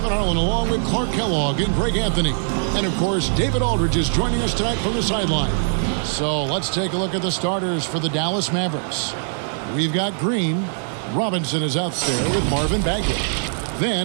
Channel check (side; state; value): left; silent; 56 dB below the other